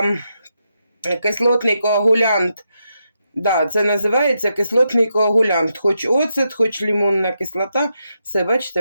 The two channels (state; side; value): inverted; both; correlation -0.83